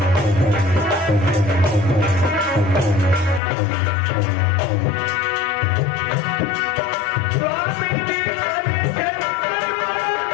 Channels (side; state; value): right; drops out; at 3.4 s